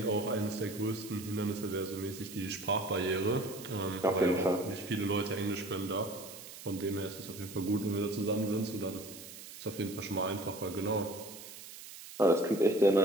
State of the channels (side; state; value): right; noise; hiss, 14 dB below the sound